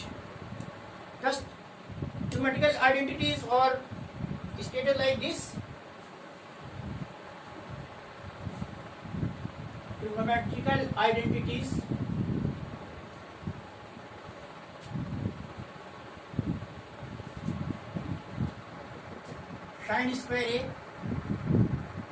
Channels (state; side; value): identical; both; correlation 1.00